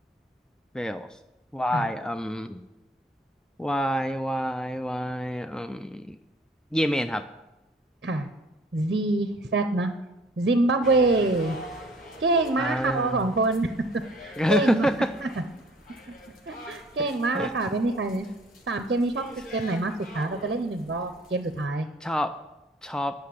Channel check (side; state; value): both; normal; correlation 0.55